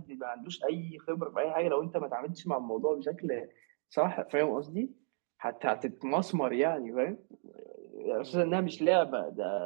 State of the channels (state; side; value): silent; left; 55 dB below the other